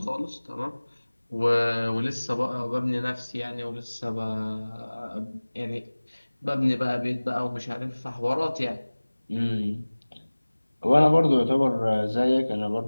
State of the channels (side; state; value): both; inverted; correlation -1.00